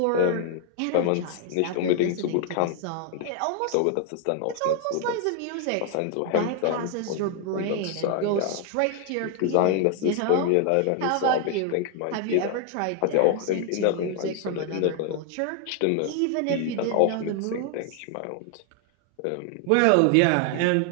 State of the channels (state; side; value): different; both; correlation 0.00